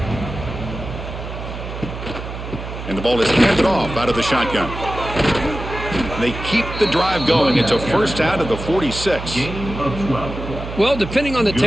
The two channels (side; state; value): right; noise; hum, 9 dB below the sound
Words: And the ball is handed off out of the shotgun. They keep the drive going. It's a first out of the 46. Gain of 12. Well, depending on the